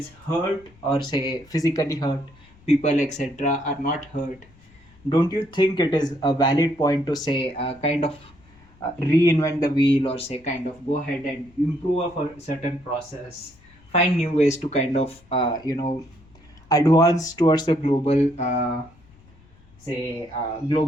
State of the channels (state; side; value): noise; left; rumble, 27 dB below the sound